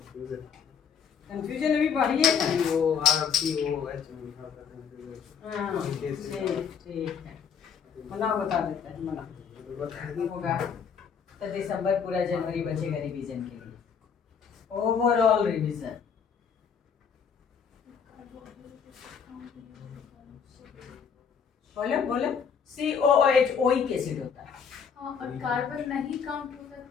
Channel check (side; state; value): right; quieter; 6.9 dB